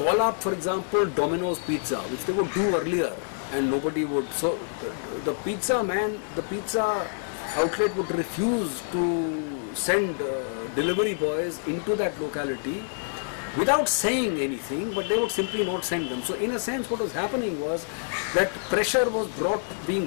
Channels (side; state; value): right; silent; digital silence